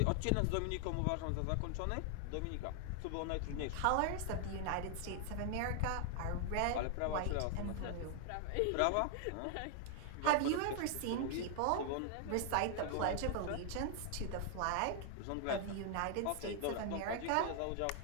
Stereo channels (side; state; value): both; different; correlation 0.00